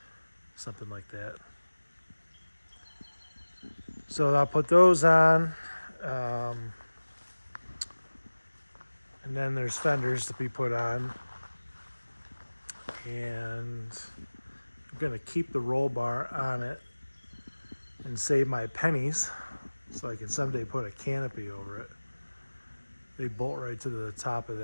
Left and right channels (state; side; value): inverted; both; correlation -1.00